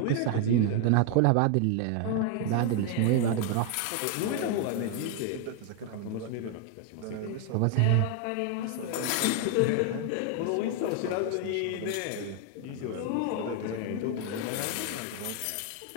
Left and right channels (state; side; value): different; both; correlation 0.00